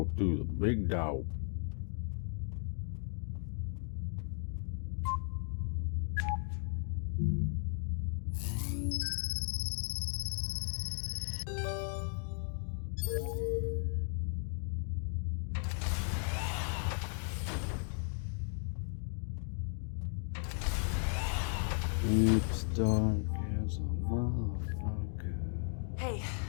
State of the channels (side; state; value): right; silent; 54 dB below the other